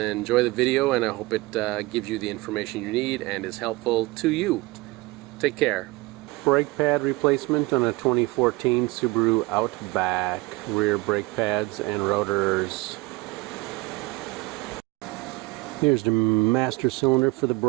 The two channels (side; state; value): left; quieter; 22.1 dB